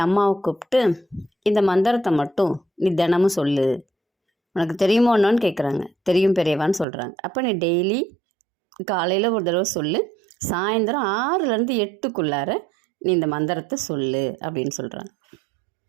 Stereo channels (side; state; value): left; drops out; at 6.9 s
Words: அம்மாவை கூப்பிட்டு, இந்த மந்திரத்தை மட்டும் நீ தினமும் சொல்லு, உனக்கு தெரியுமோ என்னன்னு கேட்குறாங்க. தெரியும் பெரியவான்னு சொல்கிறாங்க. அப்போ நீ டெய்லி காலையில் ஒரு தடவை சொல்லு, சாயந்தரம் 6லேருந்து 8க்குள்ளார நீ இந்த மந்திரத்தை சொல்லு அப்படின்னு சொல்கிறாங்க.